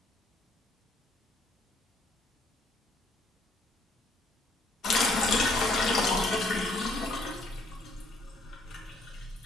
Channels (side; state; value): both; normal; correlation 0.66